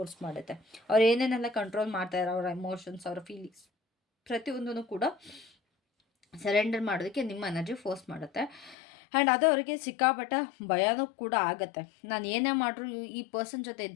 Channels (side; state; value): right; drops out; at 8.8 s